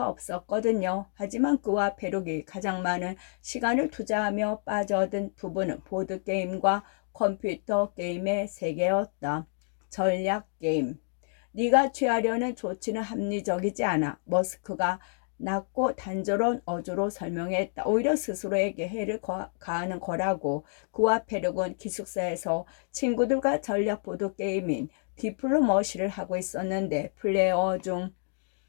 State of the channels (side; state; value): right; silent; digital silence